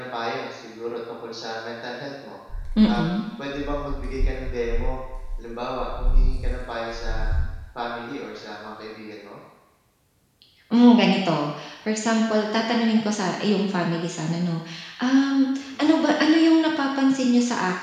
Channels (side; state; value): both; identical; correlation 1.00